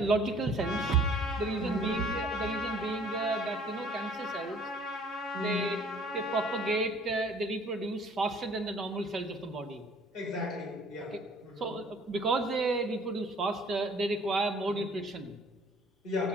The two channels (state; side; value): normal; both; correlation 0.55